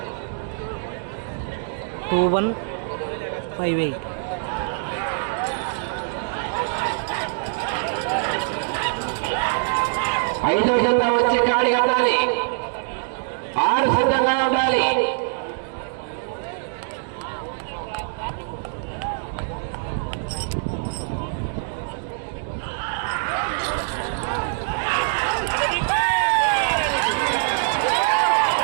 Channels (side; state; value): left; silent; digital silence